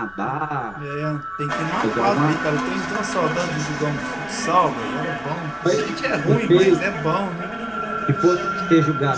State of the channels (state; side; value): noise; left; rumble, 25 dB below the sound